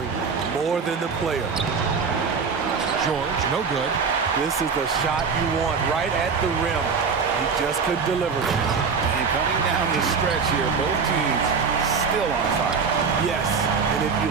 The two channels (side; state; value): left; quieter; 5.5 dB